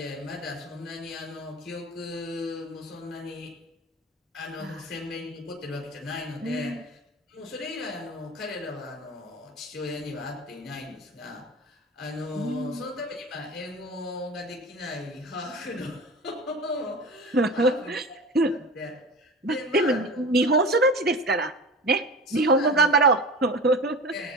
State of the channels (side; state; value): both; normal; correlation 0.33